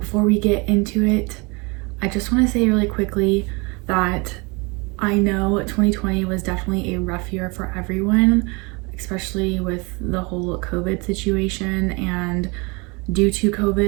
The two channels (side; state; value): left; quieter; 28.4 dB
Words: we get into it, I just want to say really quickly that I know 2020 was definitely a rough year for everyone, especially with the whole COVID situation, and due to